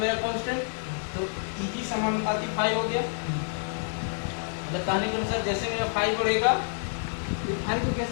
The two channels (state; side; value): silent; right; digital silence